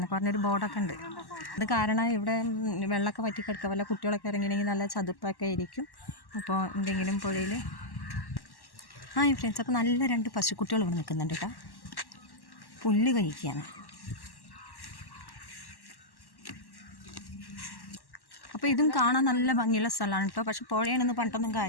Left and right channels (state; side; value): late; right; 1.1 ms